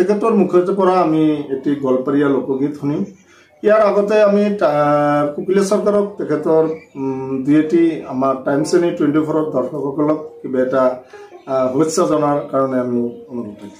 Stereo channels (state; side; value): identical; both; correlation 1.00